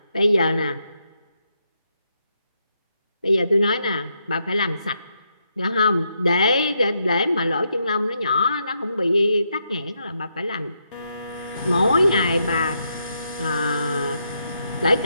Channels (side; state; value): both; inverted; correlation -0.80